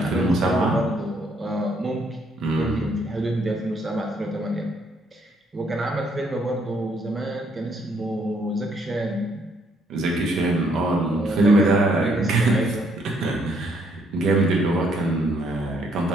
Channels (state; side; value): normal; both; correlation 0.69